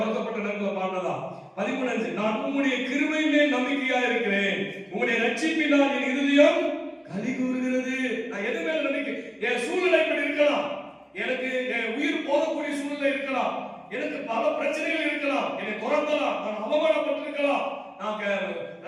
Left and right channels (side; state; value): both; identical; correlation 1.00